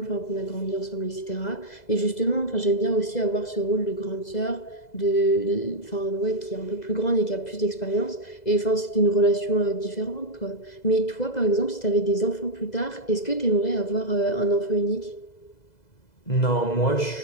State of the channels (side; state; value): right; late; 2.0 ms